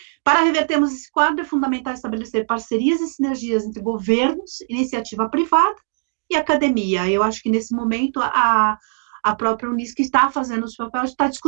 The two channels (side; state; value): left; silent; digital silence